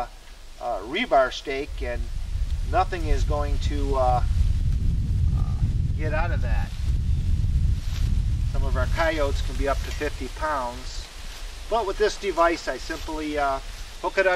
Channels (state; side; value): identical; both; correlation 1.00